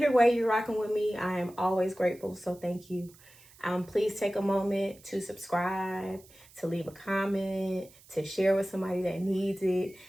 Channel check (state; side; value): noise; right; hiss, 25 dB below the sound